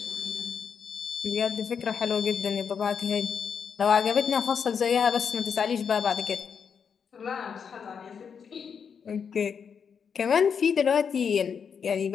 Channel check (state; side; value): quieter; right; 6.7 dB